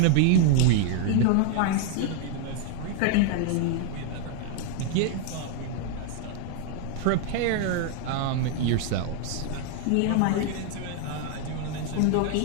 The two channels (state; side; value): different; both; correlation 0.00